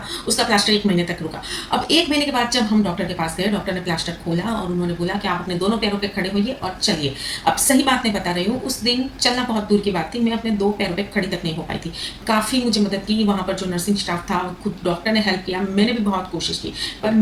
उसका प्लास्टर 1 महीने तक रुका। अब 1 महीने के बाद जब हम डॉक्टर के पास गए, डॉक्टर ने प्लास्टर खोला और उन्होंने बोला कि आप अपने दोनों पैरों पे खड़े होइए और चलिए। अब सही बात नहीं बता रही हूँ, उस दिन चलना बहुत दूर की बात थी, मैं अपने 2 पैरों पे खड़ी तक नहीं हो पाई थी। काफ़ी मुझे मदद की वहाँ पर जो नर्सिंग स्टाफ था, खुद डॉक्टर ने हेल्प किया, मैंने भी बहुत कोशिश की, पर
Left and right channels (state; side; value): identical; both; correlation 1.00